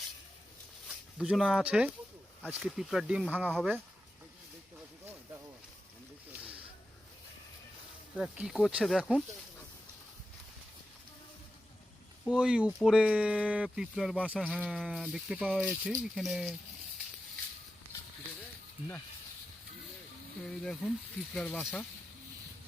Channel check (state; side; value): normal; both; correlation 0.91